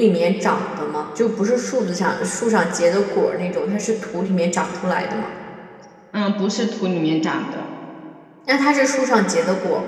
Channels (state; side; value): identical; both; correlation 1.00